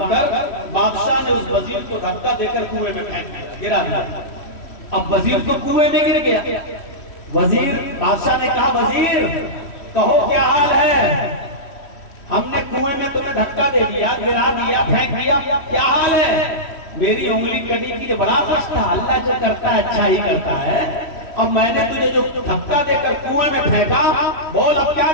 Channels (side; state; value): right; late; 3.1 ms